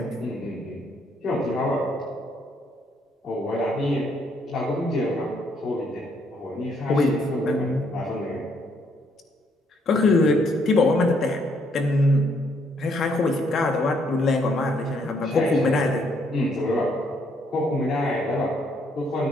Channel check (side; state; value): both; normal; correlation 0.71